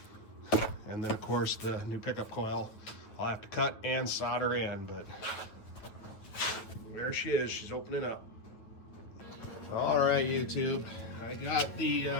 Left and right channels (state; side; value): late; right; 9.1 ms